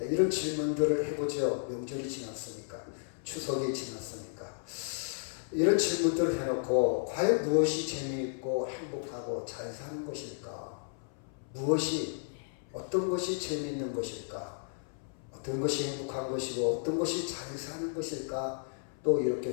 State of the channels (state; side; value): silent; right; 56 dB below the other